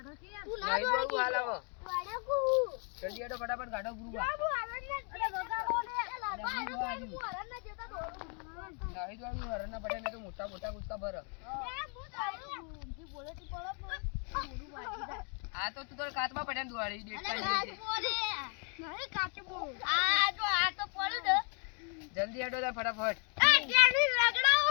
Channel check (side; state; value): right; quieter; 39.1 dB